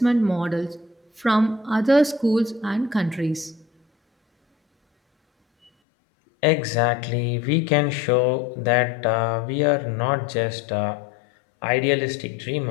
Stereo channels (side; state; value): right; drops out; at 5.7 s